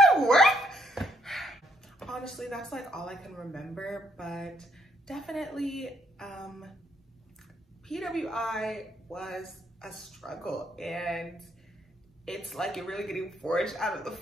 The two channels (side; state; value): both; normal; correlation 0.71